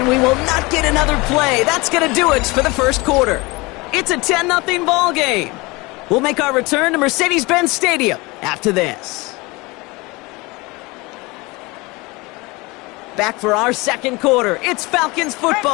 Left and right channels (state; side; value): quieter; right; 24.2 dB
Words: we will not get another play. That's going to do it for the 1st quarter. It's a 10-0 ball game. We'll make our return to Mercedes-Benz Stadium after this. Back for our 2nd quarter. It's Falcons